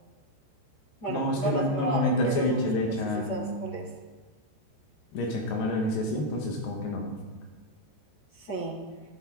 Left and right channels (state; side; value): late; right; 14 ms